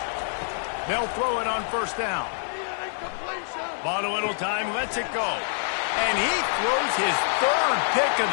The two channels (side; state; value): right; silent; digital silence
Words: They'll throw it on first down. Bought a little time, lets it go. And he throws his 3rd pick of